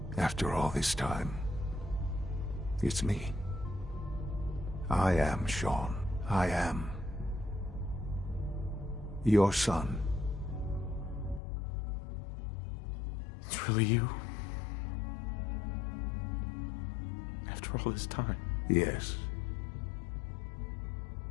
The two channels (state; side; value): drops out; right; at 11.4 s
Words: After all this time. It's me. I am Shaun. I am your son. It's really you? After all this time? Yes.